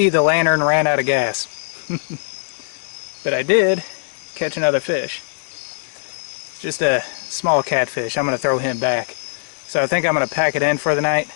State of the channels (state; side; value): silent; right; 65 dB below the other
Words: the lantern ran out of gas. But I did catch another fish. It's just a small catfish. I'm going to throw him back. So I think I'm going to pack it in for the night.